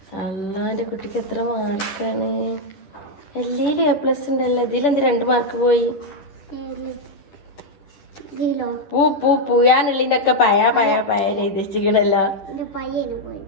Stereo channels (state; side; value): late; right; 10 ms